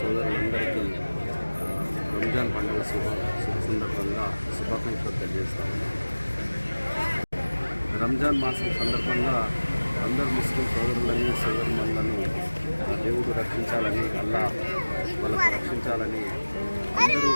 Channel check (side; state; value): both; inverted; correlation -1.00